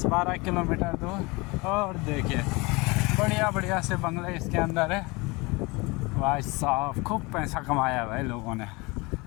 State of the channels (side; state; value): right; quieter; 25.5 dB